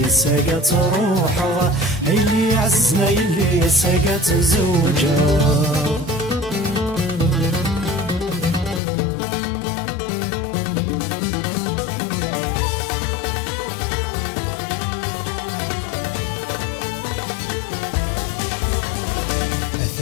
ساقات روحه اللي عززنا يلي ساقات زوجه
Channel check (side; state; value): right; drops out; at 8.8 s